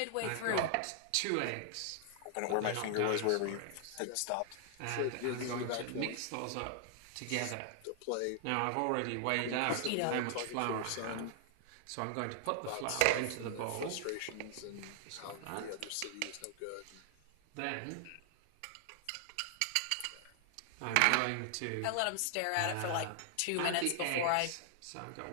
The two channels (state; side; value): different; both; correlation 0.00